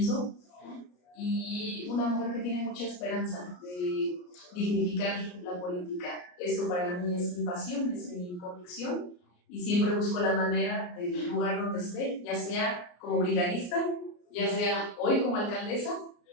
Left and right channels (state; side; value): late; right; 34 ms